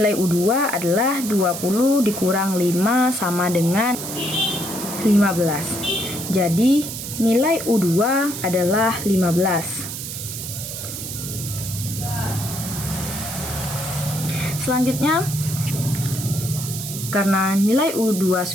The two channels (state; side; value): noise; right; hiss, 7 dB below the sound